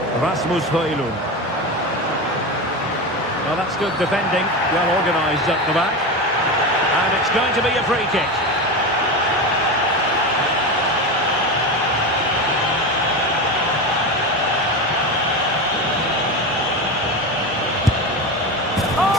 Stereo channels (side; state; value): both; normal; correlation 0.21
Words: Rasmus Højlund. Well, that's good defending. Well organised up the back. And it's going to be a free kick.